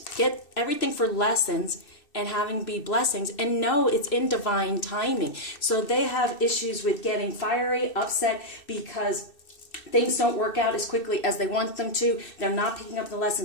get everything for lessons and having be blessings, and know it's in divine timing. So they have issues with getting fiery, upset, because things don't work out as quickly as they want them to. They're not picking up the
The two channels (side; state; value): right; late; 2.6 ms